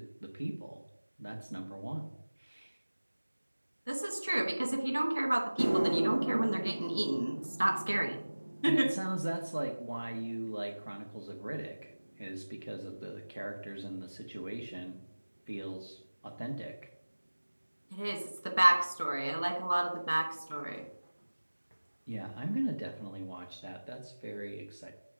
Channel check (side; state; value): both; inverted; correlation -1.00